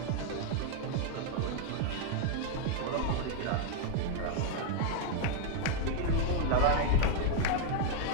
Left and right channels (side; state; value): both; different; correlation 0.00